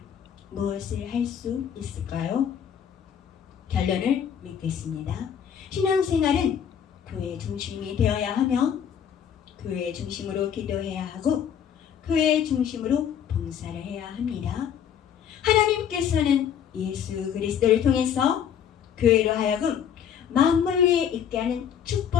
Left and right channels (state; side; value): quieter; right; 8.6 dB